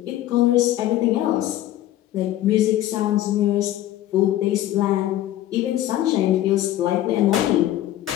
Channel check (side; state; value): right; quieter; 13.6 dB